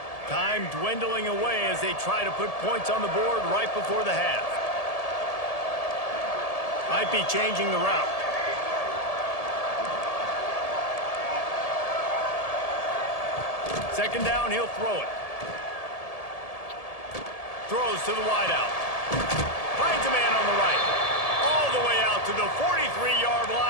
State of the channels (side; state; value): right; late; 1.7 ms